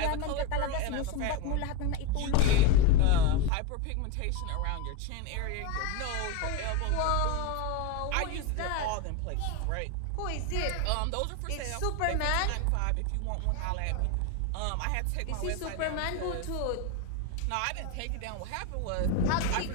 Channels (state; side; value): different; both; correlation 0.03